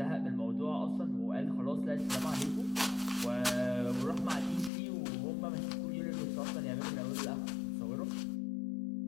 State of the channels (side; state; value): right; drops out; at 4.7 s